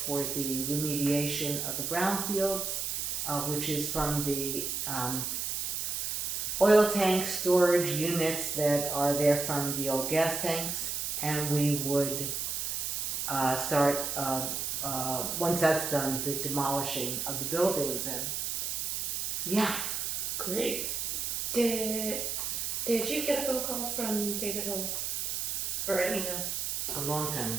for the remediation of the brownfields, which is from the oil tank storage units that are there from the old gas tanks. And we would start, once that's done, the demolishing of the buildings. And yeah. Great. Did you get a phone call from David Hill or an email? A long time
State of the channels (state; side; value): noise; right; hiss, 1 dB below the sound